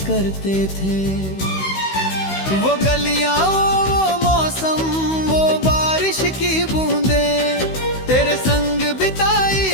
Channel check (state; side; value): late; right; 16 ms